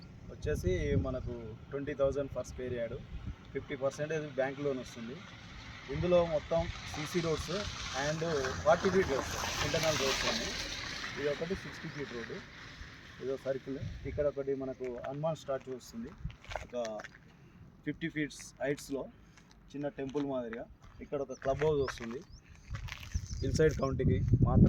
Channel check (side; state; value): both; identical; correlation 1.00